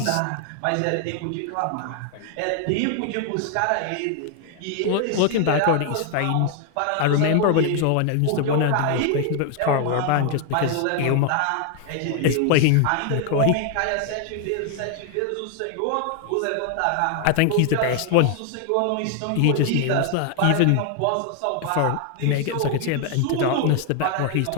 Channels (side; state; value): both; different; correlation 0.00